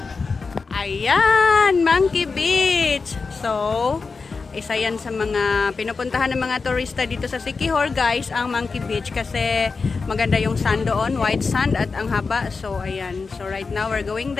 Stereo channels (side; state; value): right; quieter; 4.5 dB